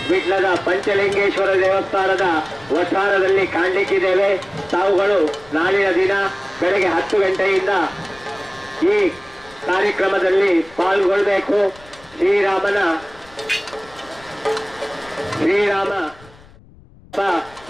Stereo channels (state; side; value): noise; left; rumble, 25 dB below the sound